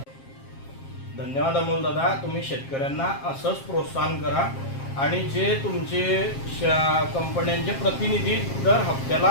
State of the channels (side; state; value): right; late; 7.4 ms